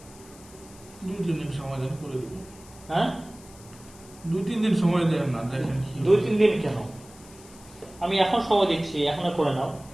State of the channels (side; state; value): left; noise; hiss, 22 dB below the sound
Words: 2-3 দিন সময় দেন, করে দেবো। হ্যাঁ, 2-3 দিন সময় দেন না, দেখেন কি হয়। 2-3 দিন কেন? আমি এখন সময় দিচ্ছি, এখনো করে নাও।